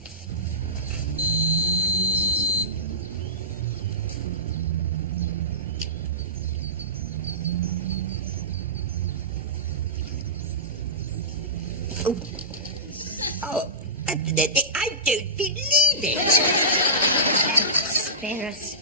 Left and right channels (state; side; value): normal; both; correlation -0.19